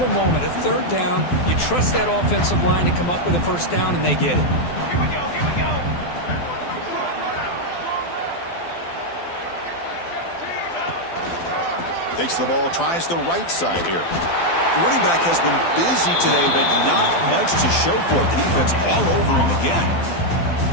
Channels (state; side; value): late; right; 12 ms